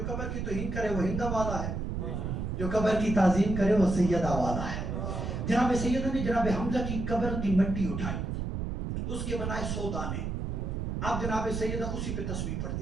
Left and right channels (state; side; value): noise; right; rumble, 3 dB below the sound